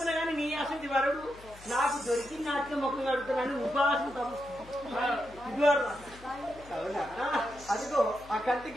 కానీ నీ అసలు వరడు నాకు దొరికిన నాటికి ముఖం కడుగుతానని ఉపాసం అవునా అదిగో ఆ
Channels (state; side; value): noise; left; hum, 20 dB below the sound